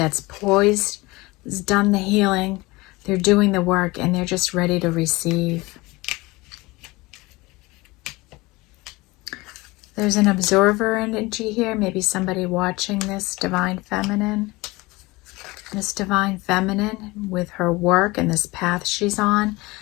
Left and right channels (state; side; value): quieter; right; 22.3 dB